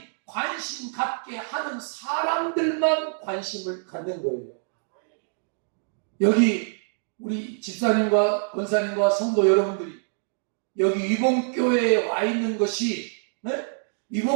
관심 갖게 하는 사람들만 관심을 갖는 거예요. 여기 우리 집사님과 권사님과 성도 여러분들이 여기 위봉교회에 와 있는 것이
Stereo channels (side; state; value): left; silent; digital silence